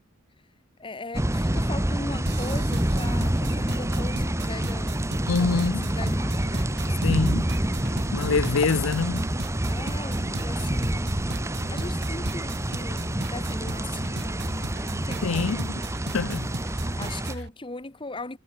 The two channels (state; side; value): normal; both; correlation 0.72